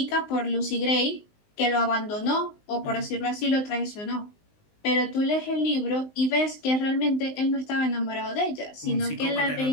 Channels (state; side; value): late; right; 19 ms